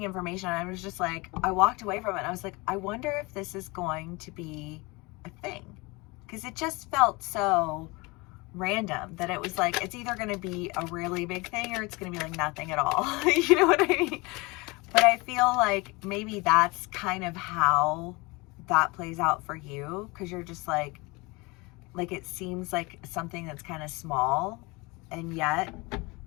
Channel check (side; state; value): right; quieter; 25.4 dB